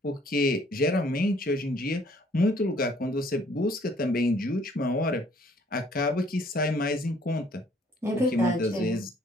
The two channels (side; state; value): both; normal; correlation 0.61